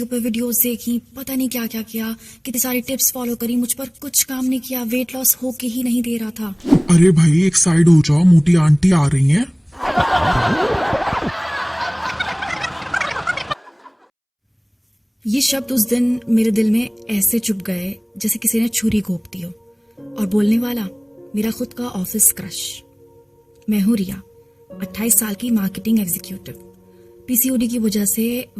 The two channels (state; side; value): identical; both; correlation 1.00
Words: पे वीडियोस देखी, पता नहीं क्या क्या किया, कितनी सारी टिप्स फॉलो करी, मुझ पर कुछ काम नहीं किया। वेट लॉस हो के ही नहीं दे रहा था। अरे भाई एक साइड हो जाओ, मोटी आंटी आ रही हैं। ये शब्द उस दिन मेरे दिल में ऐसे चुभ गए जैसे किसी ने छुरी घोंप दी हो। और बोलने वाला मेरा खुद का ऑफिस क्रश। मैं हूं रिया, 28 साल की मार्केटिंग एग्जीक्यूटिव। पीसीओडी की वजह से